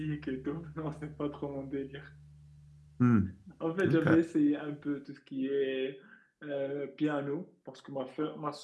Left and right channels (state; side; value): identical; both; correlation 1.00